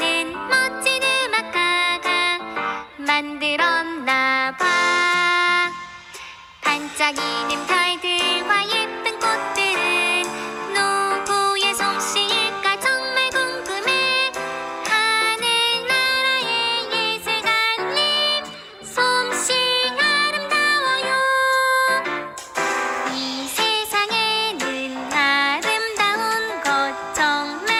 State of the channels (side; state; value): both; identical; correlation 1.00